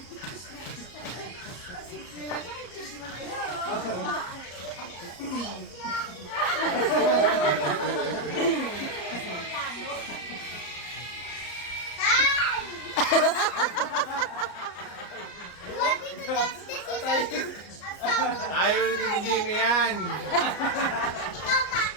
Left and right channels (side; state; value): right; late; 34 ms